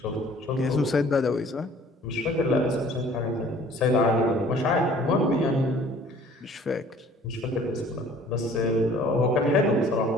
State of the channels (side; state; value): both; normal; correlation 0.52